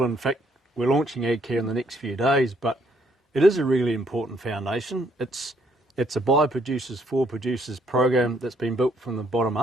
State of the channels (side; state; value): both; normal; correlation 0.68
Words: In fact, we're launching AgCarE in the next few days, but it is a really important foundation. It's a by producers for producers program that's been built from the bottom